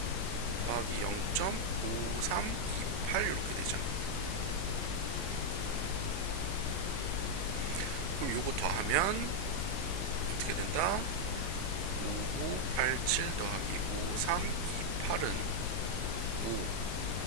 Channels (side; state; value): left; noise; hum, 3 dB below the sound